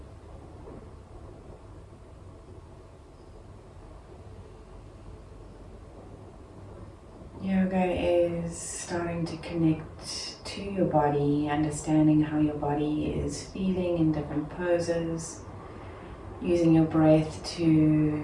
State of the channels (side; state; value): both; identical; correlation 1.00